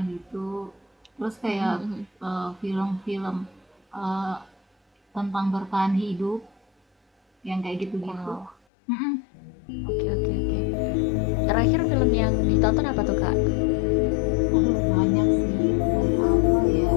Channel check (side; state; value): right; drops out; at 8.6 s